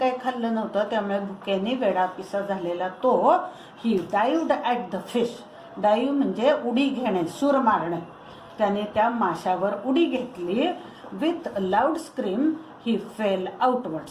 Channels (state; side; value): identical; both; correlation 1.00